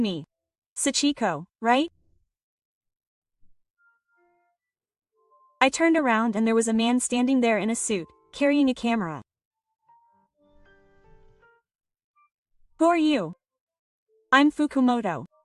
Sachiko, right? I turned around and there was a man standing there in a suit, carrying a camera. Who are you? I'm Fukumoto.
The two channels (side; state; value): both; identical; correlation 1.00